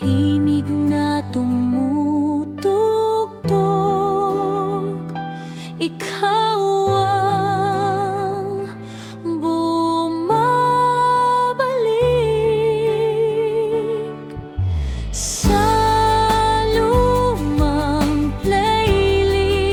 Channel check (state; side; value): identical; both; correlation 1.00